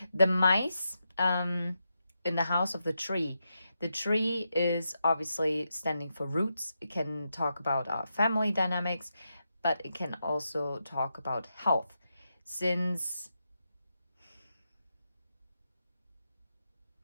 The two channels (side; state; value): both; inverted; correlation -0.86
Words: The mice in the house of the tree. The tree is obviously standing for roots. It can talk about our family dynamics, but it can also talk about health. Since...